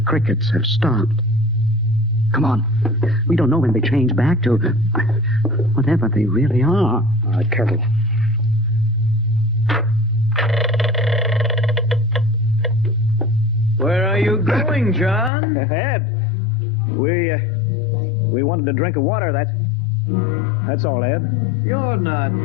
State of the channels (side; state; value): right; drops out; at 15.3 s